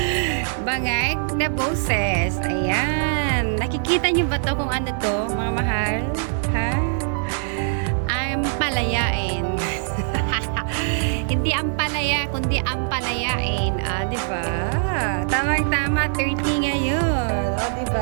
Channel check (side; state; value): left; silent; digital silence